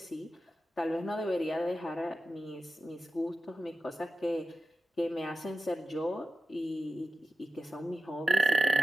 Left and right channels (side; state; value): both; normal; correlation 0.93